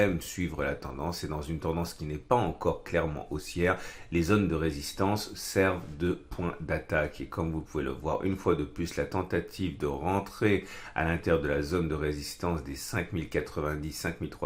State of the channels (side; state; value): both; identical; correlation 1.00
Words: suivre la tendance et dans une tendance qui n'est pas encore clairement haussière, les zones de résistance servent de point d'attaque. Et comme vous pouvez le voir, une fois de plus, la tentative de rentrer à l'intérieur de la zone de résistance des